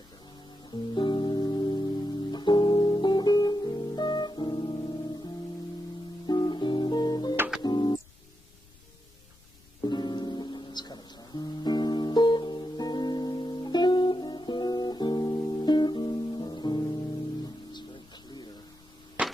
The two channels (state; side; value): noise; left; rumble, 27 dB below the sound